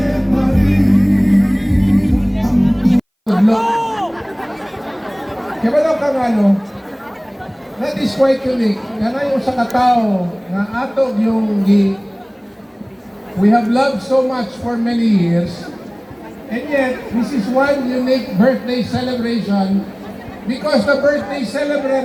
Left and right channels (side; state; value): both; identical; correlation 1.00